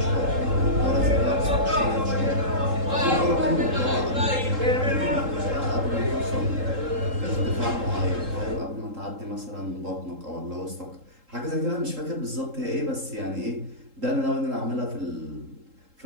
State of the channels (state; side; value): late; left; 3.8 ms